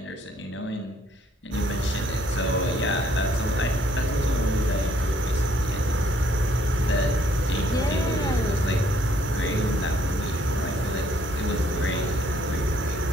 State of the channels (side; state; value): both; normal; correlation 0.66